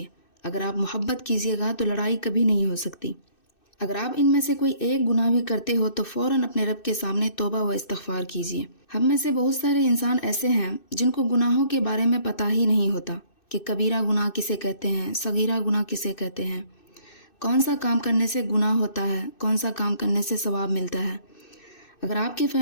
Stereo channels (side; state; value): right; late; 2.6 ms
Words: اگر آپ محبت کیجیے گا تو لڑائی کبھی نہیں ہو سکتی. اگر آپ ان میں سے کوئی ایک گناہ بھی کرتے ہو تو فوراً اپنے رب کے سامنے توبہ و استغفار کیجیے. ہم میں سے بہت سارے انسان ایسے ہیں جن کو گناہوں کے بارے میں پتہ ہی نہیں ہوتا کہ کبیرہ گناہ کسے کہتے ہیں، صغیرہ گناہ کسے کہتے ہیں، کون سا کام کرنے سے گناہ ہوتا ہے، کون سا کام کرنے سے ثواب ملتا ہے. اگر آپ کی